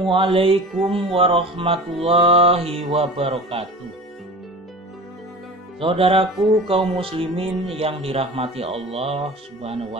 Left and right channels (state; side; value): normal; both; correlation 0.36